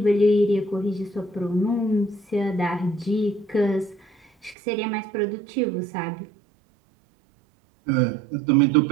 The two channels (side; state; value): left; drops out; at 4.5 s